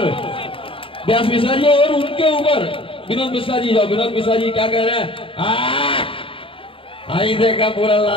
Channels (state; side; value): late; right; 0.26 ms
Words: व्यास मिश्रा जी और उनके ऊपर विनोद मिश्रा जी। जाओ, विनोद मिश्रा जी क्या कह रहे हैं? आई देखा पूरा